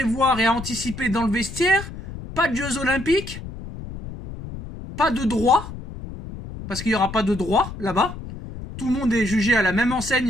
et à anticiper dans le vestiaire, pas de Jeux Olympiques, pas de droit, parce qu'il n'y aura pas de droit là-bas. Tout le monde est jugé à la même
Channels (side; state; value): left; noise; rumble, 11 dB below the sound